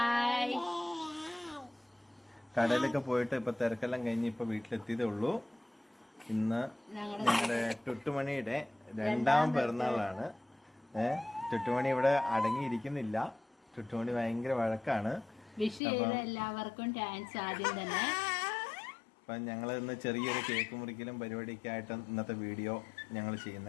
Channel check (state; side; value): drops out; right; at 15.8 s